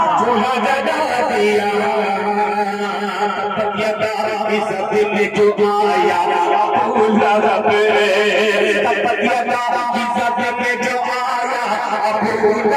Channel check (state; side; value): identical; both; correlation 1.00